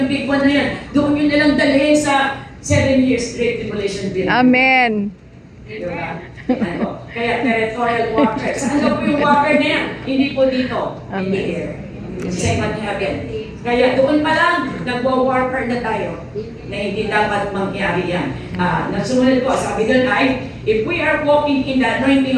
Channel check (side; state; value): both; identical; correlation 1.00